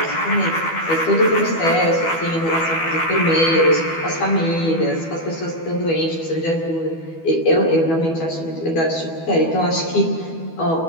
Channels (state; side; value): late; right; 12 ms